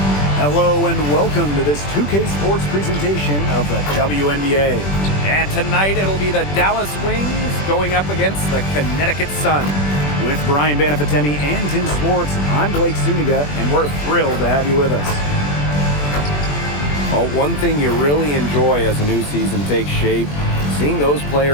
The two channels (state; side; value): late; right; 21 ms